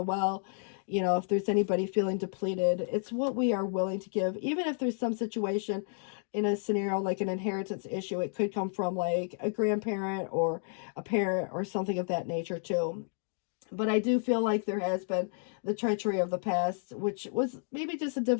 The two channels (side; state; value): right; silent; digital silence